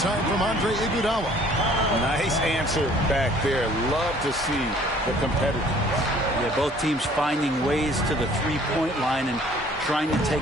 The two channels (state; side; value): normal; both; correlation 0.55